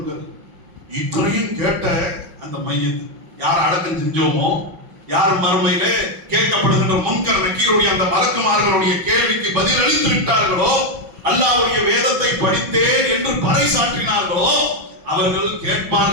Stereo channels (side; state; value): left; late; 5.8 ms